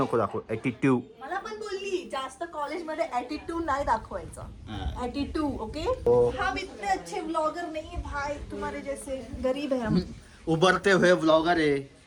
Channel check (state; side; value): identical; both; correlation 1.00